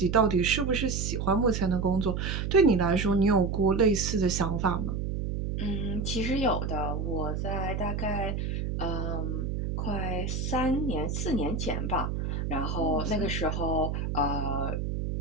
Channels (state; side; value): noise; right; hum, 2 dB below the sound